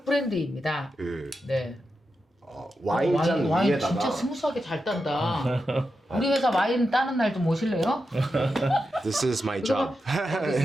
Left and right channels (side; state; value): both; normal; correlation 0.88